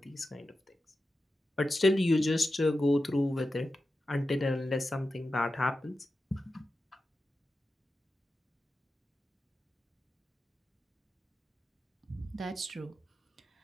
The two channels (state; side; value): normal; both; correlation 0.92